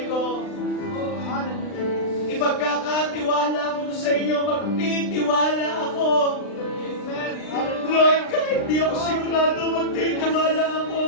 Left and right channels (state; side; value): late; right; 39 ms